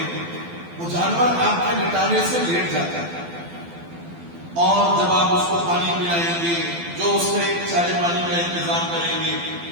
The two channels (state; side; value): late; left; 12 ms